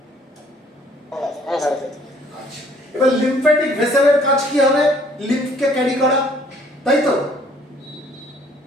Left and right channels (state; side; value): normal; both; correlation 0.60